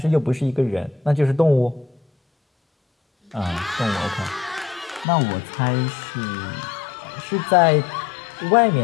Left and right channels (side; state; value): right; drops out; at 5.1 s